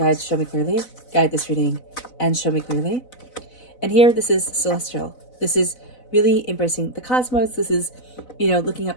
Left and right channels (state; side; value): late; right; 4.0 ms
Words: show me clearly. Guide this reading and show me clearly. And here, this is celestial. This is really embracing the cosmos. This is, looking